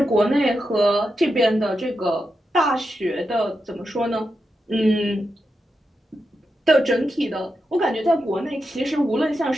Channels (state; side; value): normal; both; correlation 0.87